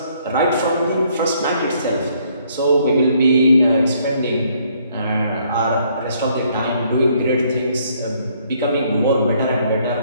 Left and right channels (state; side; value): inverted; both; correlation -0.66